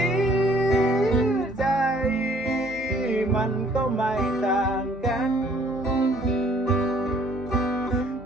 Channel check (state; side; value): normal; both; correlation 0.59